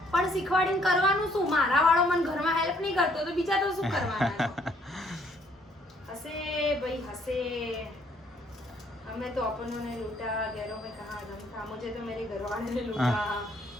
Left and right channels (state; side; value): normal; both; correlation 0.65